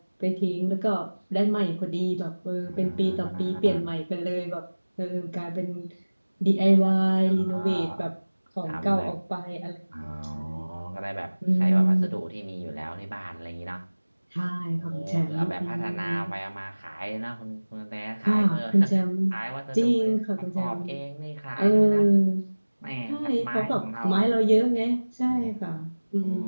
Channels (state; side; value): inverted; both; correlation -1.00